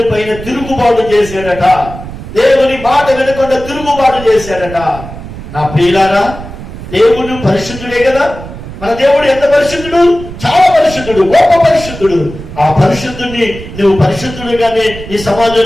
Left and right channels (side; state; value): right; noise; rumble, 12 dB below the sound